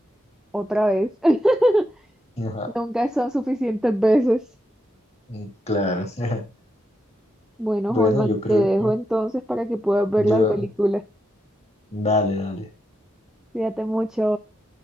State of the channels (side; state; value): both; normal; correlation 0.84